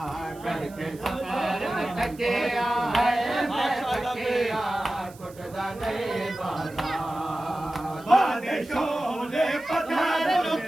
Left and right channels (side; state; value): right; noise; hiss, 23 dB below the sound